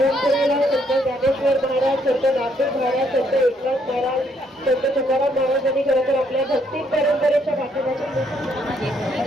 संत ज्ञानेश्वर महाराज, संत नामदेव महाराज, संत एकनाथ महाराज, संत तुकाराम महाराजांनी खरं तर आपल्या भक्ती परंपरेच्या पाठीमागून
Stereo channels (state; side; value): normal; both; correlation 0.71